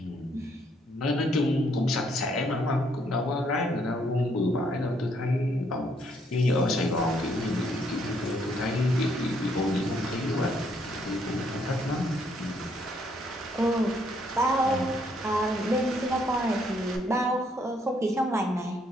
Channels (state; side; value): normal; both; correlation 0.70